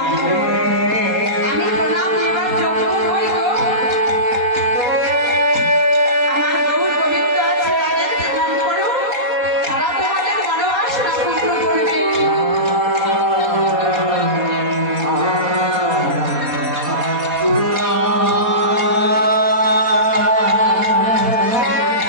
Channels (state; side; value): late; left; 4.2 ms